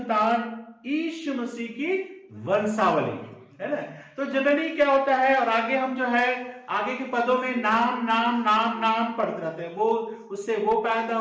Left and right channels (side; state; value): both; identical; correlation 1.00